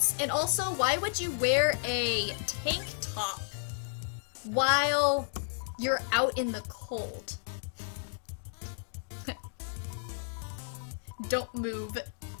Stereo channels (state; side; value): silent; right; digital silence